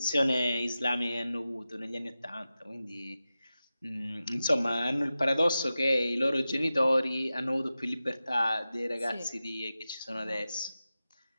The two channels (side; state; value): both; inverted; correlation -0.94